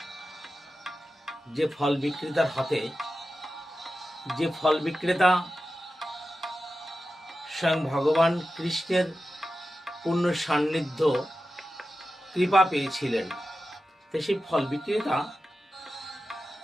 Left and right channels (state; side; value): normal; both; correlation 0.92